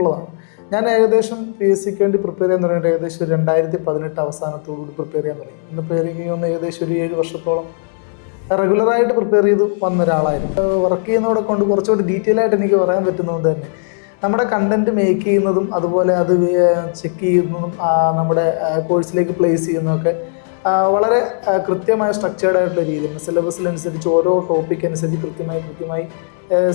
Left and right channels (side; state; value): right; silent; 68 dB below the other